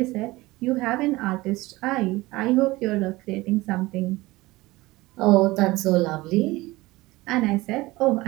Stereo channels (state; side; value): quieter; left; 20.0 dB